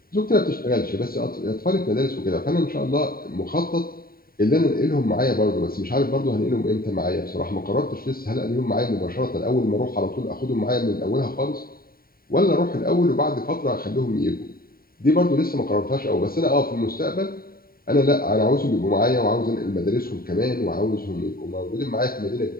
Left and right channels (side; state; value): right; late; 0.43 ms